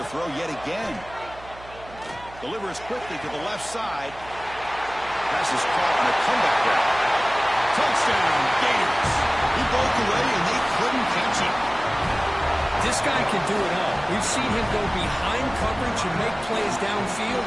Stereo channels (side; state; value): right; noise; hum, 19 dB below the sound